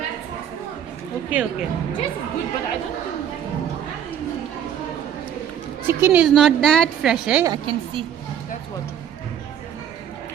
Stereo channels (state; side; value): quieter; left; 9.3 dB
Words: Okay. Just good, but I don't think. Chicken is not that fresh, eh? I can see. That's what.